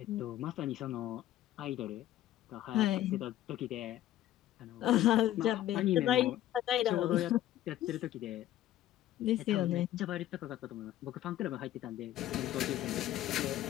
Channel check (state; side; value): quieter; right; 13.3 dB